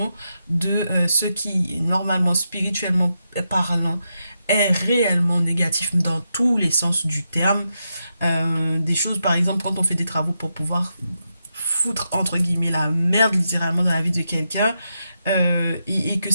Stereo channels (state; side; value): inverted; both; correlation -0.85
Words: de ce qui, normalement, spirituellement parlant, est réellement négatif dans tous les sens du terme. Des choses, par exemple, quand on fait des travaux pour pouvoir foutre, entre guillemets, la merde littéralement dans la vie de quelqu'un, et que